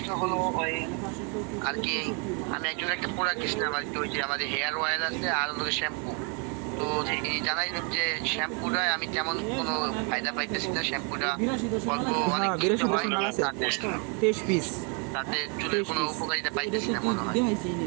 হলো ওই আর কি, আমি একজন একটা প্রোডাক্ট কিনলাম আর কি, ওই যে আমাদের হেয়ার অয়েল আছে আর হলো শ্যাম্পু। তো তিনি জানাইলেন যে শ্যাম্পুটা আমি তেমন কোনো ফায়দা পাইতেছি না, শ্যাম্পুটা অল্প অনেক তাতে চুলের কোনো উপকারিতা পাইতেছি না মনে হয়।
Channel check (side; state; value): left; quieter; 36.2 dB